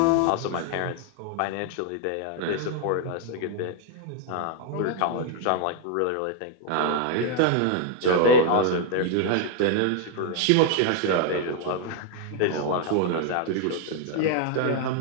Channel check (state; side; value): different; both; correlation 0.00